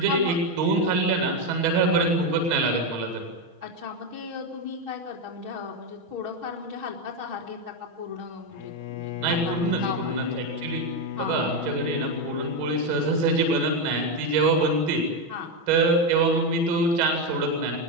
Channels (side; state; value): left; late; 6.3 ms